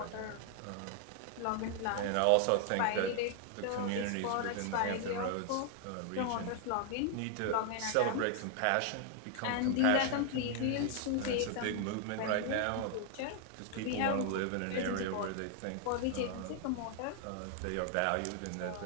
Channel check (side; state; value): both; different; correlation 0.00